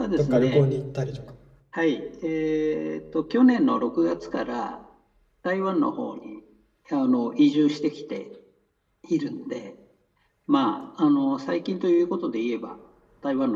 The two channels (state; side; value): identical; both; correlation 1.00